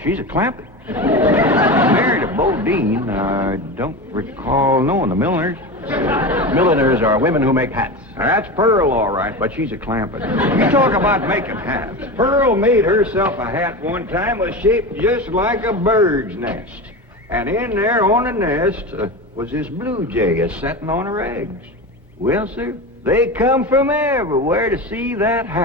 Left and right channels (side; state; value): both; normal; correlation 0.25